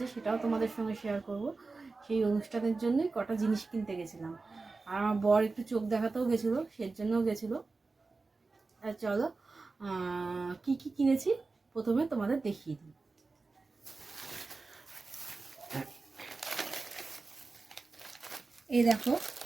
সেটাও তোমাদের সঙ্গে শেয়ার করব। সেই অনুষ্ঠানের জন্যই কটা জিনিস কিনতে গেছিলাম। আর আমার বর একটু চোখ দেখাতেও গেছিলো, সের জন্যও গেছিলো। আর চলো কি কিনেছি প্রথমে তোমাদের দেখিয়ে দিই। এই দেখো,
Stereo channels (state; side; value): quieter; left; 3.9 dB